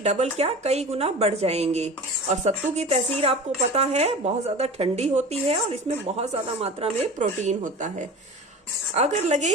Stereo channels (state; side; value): normal; both; correlation 0.35